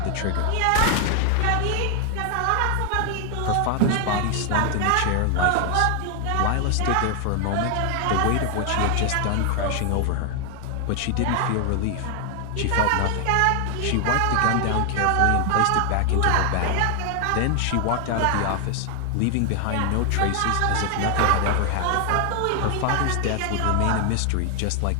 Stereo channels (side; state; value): both; different; correlation 0.00